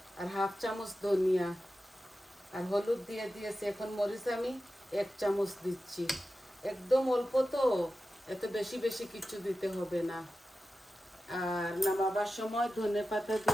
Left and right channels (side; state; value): both; normal; correlation 0.93